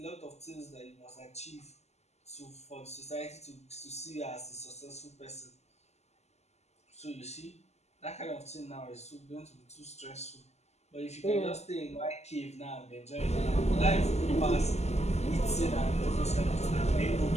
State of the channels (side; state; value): right; late; 0.32 ms